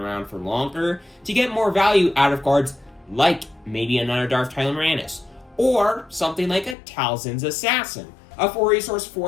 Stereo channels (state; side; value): drops out; right; at 6.8 s